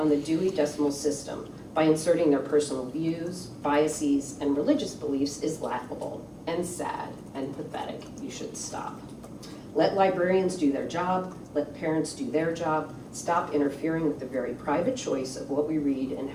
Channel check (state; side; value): identical; both; correlation 1.00